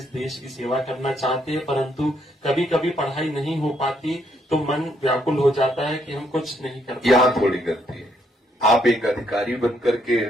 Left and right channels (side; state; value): both; normal; correlation 0.73